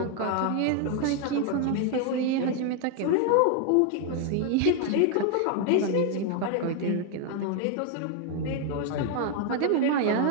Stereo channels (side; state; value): both; different; correlation 0.00